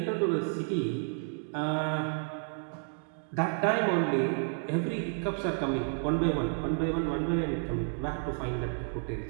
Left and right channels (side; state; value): left; silent; 57 dB below the other